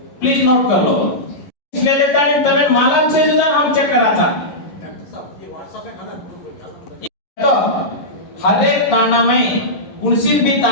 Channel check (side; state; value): right; late; 11 ms